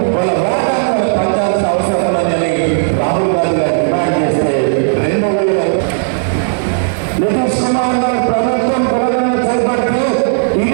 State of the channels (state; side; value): silent; left; digital silence